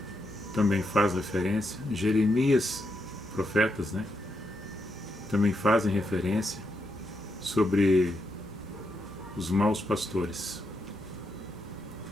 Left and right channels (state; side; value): normal; both; correlation 0.82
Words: também faz referência, Jeremias, profetas, também fazem referência sobre os maus pastores.